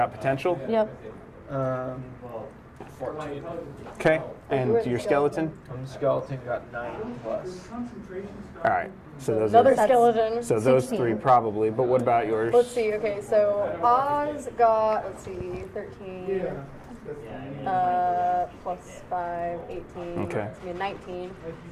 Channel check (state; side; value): identical; both; correlation 1.00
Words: potential. Yep. 14. Okay, and your skeleton. Skeleton got 9 plus. All right, so those Another are skeleton. so those 16. 3 probably. But what about yours? Let's see. Okay, so Oz got 13. Plus 5, 18. Okay. That's gonna be 19.